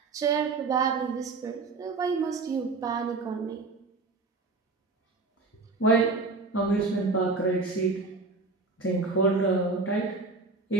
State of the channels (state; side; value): quieter; left; 3.9 dB